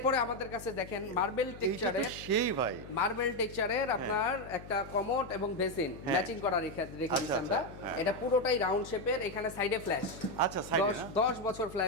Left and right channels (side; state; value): left; noise; hum, 15 dB below the sound